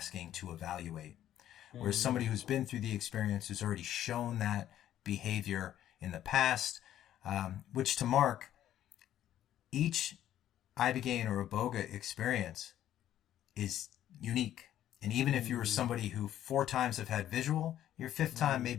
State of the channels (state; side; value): quieter; right; 11.8 dB